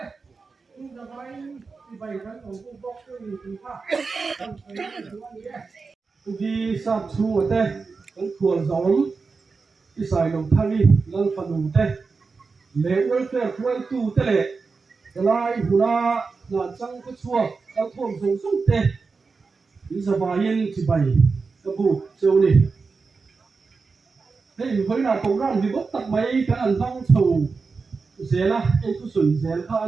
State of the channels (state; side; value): quieter; left; 4.5 dB